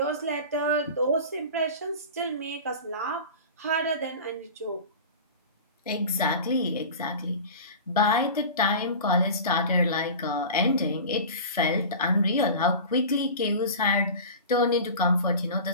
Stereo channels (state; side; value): inverted; both; correlation -0.34